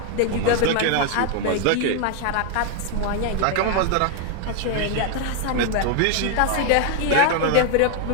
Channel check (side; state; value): both; different; correlation 0.01